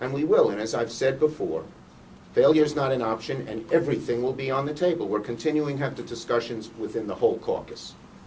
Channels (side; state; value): both; identical; correlation 1.00